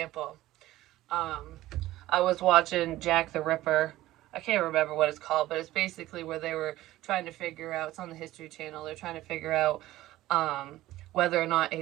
I was watching Jack the Ripper. I can't remember what it's called, but it's basically where they were trying to figure out. It's on the History Channel. They're trying to figure out whether or not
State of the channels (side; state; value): left; quieter; 16.0 dB